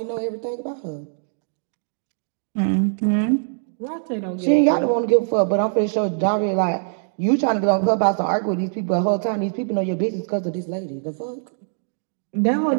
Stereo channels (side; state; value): left; silent; digital silence